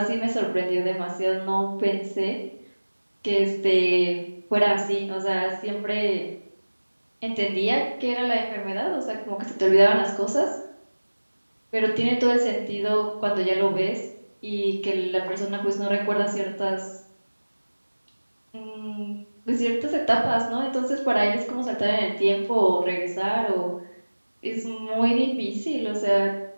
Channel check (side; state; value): both; inverted; correlation -1.00